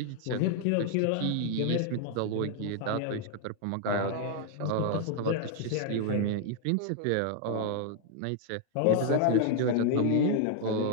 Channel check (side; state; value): both; different; correlation 0.00